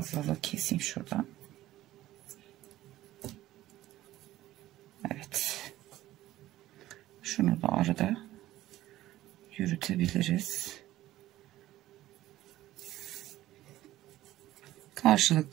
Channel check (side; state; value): left; quieter; 15.1 dB